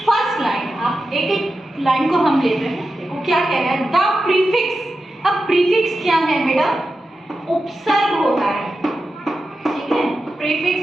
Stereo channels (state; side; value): normal; both; correlation 0.91